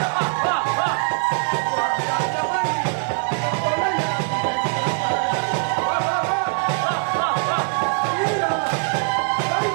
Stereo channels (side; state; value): left; silent; digital silence